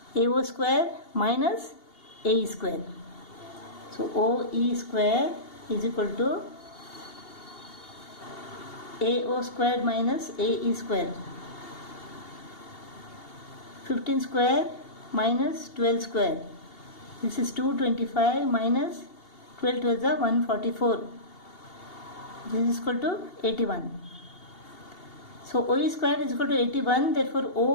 AO square minus AE square. So OE square is equal to AO squared minus AE square. 15 square minus 12 square. This is 225 minus 12 12 is 144. This is equal to 81. So OE square is equal to 81, therefore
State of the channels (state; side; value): late; right; 2.8 ms